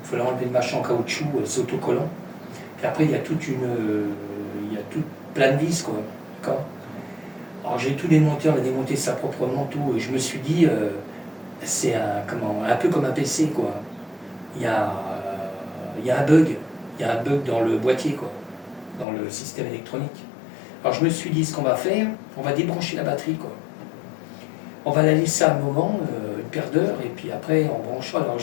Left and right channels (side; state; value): right; drops out; at 19.1 s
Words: Il fallait enlever le machin en caoutchouc, c'est autocollant. Puis après il y a plein de vis, quoi. D'accord. Alors j'ai tout démonté, on a démonté ça proprement, tout, et je me suis dit, c'est un peu comme un PC, quoi. Il y a un bug, dans le boîtier, quoi, dans le système électronique. Alors je me suis dit, ce qu'on va faire, on va débrancher la batterie, quoi. On va la laisser un moment, une paire d'heures, et puis après on branchera. Alors